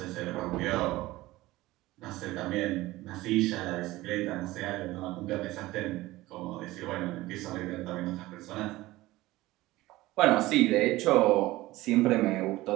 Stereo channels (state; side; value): quieter; left; 18.2 dB